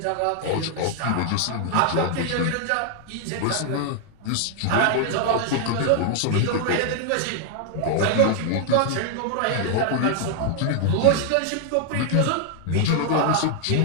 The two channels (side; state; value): both; different; correlation 0.00